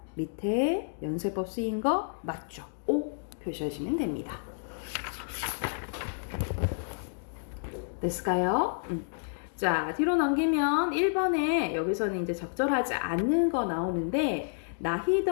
밑에 연쇄법 쓰인 거 맞죠? O 표시하시면 됩니다. 됐을까요? 자, 뒤로 넘기면 1번에 여기서는 이제 적절하지 않는 거 나오는데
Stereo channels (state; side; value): silent; right; digital silence